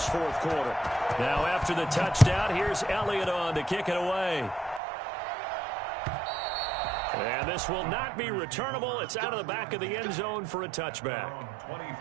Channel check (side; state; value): left; drops out; at 4.8 s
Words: 4th quarter. Now after the touchdown, here's Elliott on to kick it away. And this will not be returnable. It's out of the back of the end zone for a touchback.